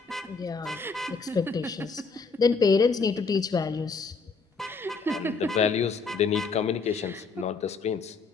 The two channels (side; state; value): right; quieter; 4.6 dB